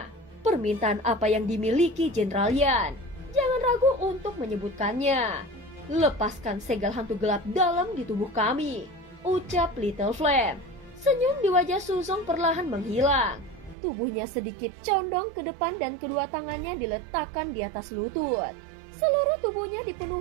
permintaan apa yang dimiliki Jenderal Yan? Jangan ragu untuk menyebutkannya. Lepaskan segel hantu gelap dalam di tubuh kami, ucap Little Flame. Senyum di wajah Suzong perlahan menghilang. Tubuhnya sedikit condong ke depan dan kedua tangannya diletakkan di atas lutut. Seluruh tubuhnya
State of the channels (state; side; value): drops out; left; at 13.8 s